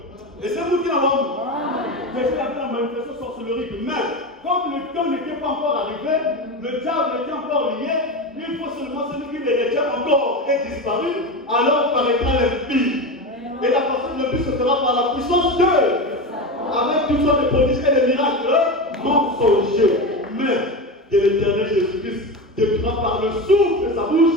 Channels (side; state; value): both; normal; correlation 0.21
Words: Et c'est vous qui l'avez vu. Jésus avait la manifestation sorcellerie de même. Comme le temps n'était pas encore arrivé, le diable était encore lié, il faut seulement celui qui les retient encore est disparu, alors paraîtra l'impie. Et la personne le plus se fera par la puissance de Dieu, avec toutes sortes de prodiges et de miracles mensongers. Mais de l'éternel Jésus-Christ décrira par le souffle de sa